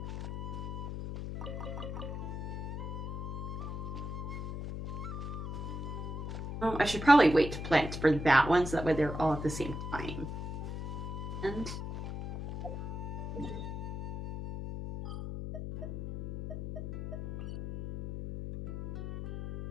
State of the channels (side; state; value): left; noise; hum, 5 dB below the sound